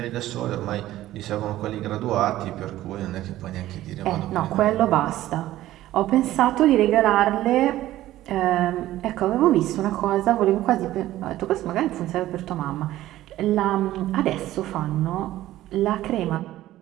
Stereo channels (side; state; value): left; quieter; 14.7 dB